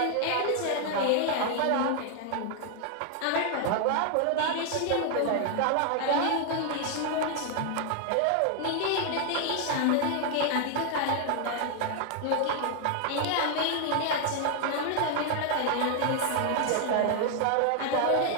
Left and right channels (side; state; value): both; different; correlation 0.00